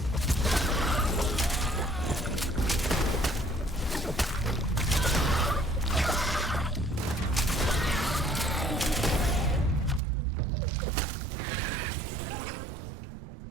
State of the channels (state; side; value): drops out; left; at 10.0 s